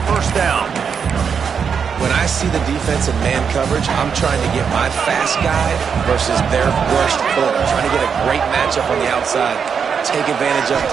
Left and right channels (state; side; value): quieter; left; 6.6 dB